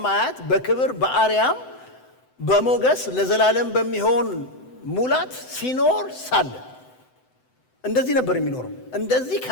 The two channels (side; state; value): right; late; 7.9 ms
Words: በክብር በአርያም በሞገስ ለዘላለም በሚሆን ሙላት ሲኖር ሳለ እንደዚህ ነበር የሚኖረው። እንደዚህ